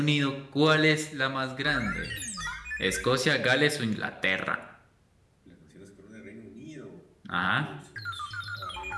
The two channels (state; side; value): identical; both; correlation 1.00